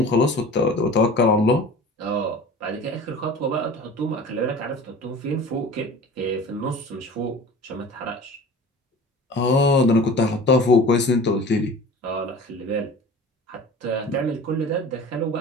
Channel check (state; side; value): normal; both; correlation 0.40